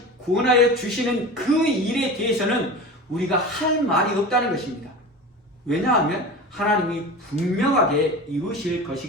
구원하여 주시는 그 일에 대해서는 우리가 할 말이 없다는 것입니다. 왜냐하면 하나님이 분명하게 이루실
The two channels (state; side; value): normal; both; correlation 0.32